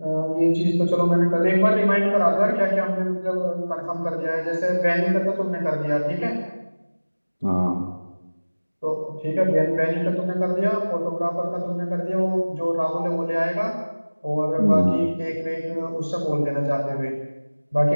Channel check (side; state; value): both; inverted; correlation -1.00